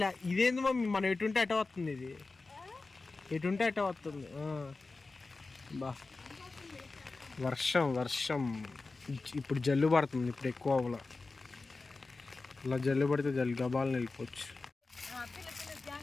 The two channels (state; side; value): quieter; right; 3.7 dB